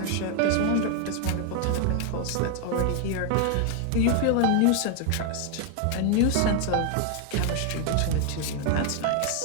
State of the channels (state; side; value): different; both; correlation 0.00